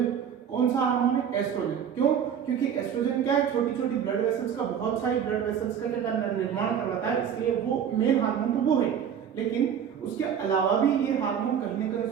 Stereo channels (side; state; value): left; quieter; 8.4 dB